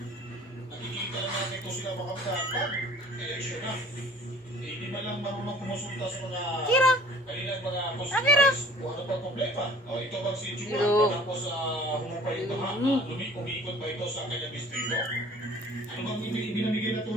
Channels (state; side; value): normal; both; correlation 0.50